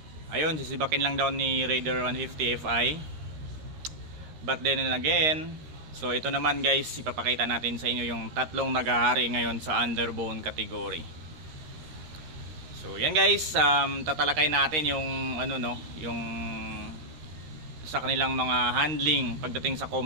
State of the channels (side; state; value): left; late; 13 ms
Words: ayun, sisibakin lang daw ni Raider 150 Fi. But then again, so ito naman guys, ipapakita natin sa inyo yung tatlong naghahari ngayon sa underbone category. So yan guys, tatalakay natin yung yung sa kanilang mga handling pagdating sa